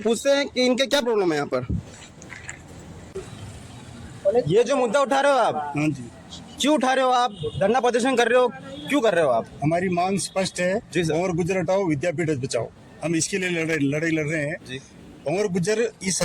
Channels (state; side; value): identical; both; correlation 1.00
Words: हैं कि इनके क्या प्रॉब्लम है यहाँ पर। ये जो मुद्दा उठा रहे हो आप, हाँ जी, क्यों उठा रहे हो आप? धरना प्रदर्शन कर रहे हो, क्यों कर रहे हो आप? हमारी मांग स्पष्ट है जी सर। भंवर गुजर हटाओ विद्यापीठ बचाओ। हम इसके लिए लड़ाई लड़ रहे हैं जी। भंवर गुजर इस